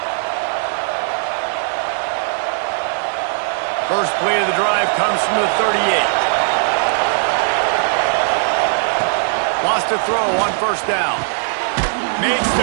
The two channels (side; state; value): left; silent; digital silence